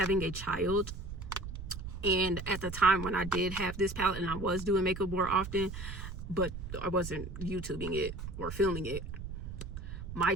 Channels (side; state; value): right; noise; rumble, 8 dB below the sound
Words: a child. And at the time when I did have this palette, and I was doing makeup more often, but I wasn't YouTubing it or filming it, my